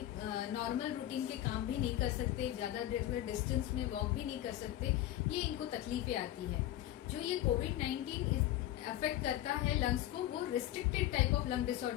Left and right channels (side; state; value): right; quieter; 13.7 dB